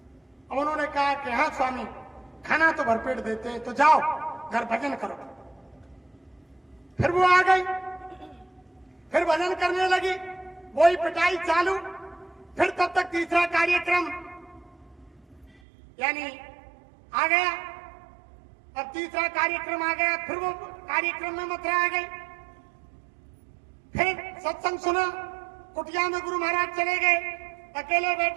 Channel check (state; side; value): drops out; left; at 15.6 s